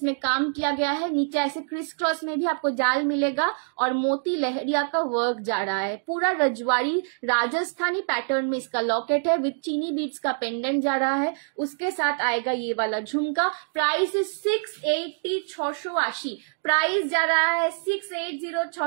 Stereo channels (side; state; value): left; silent; 61 dB below the other